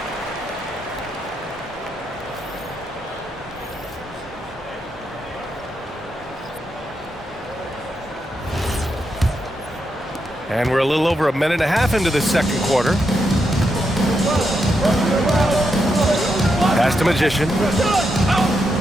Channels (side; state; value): both; normal; correlation 0.83